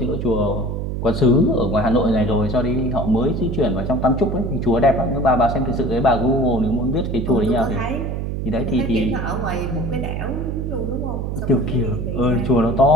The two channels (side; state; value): right; noise; hum, 3 dB below the sound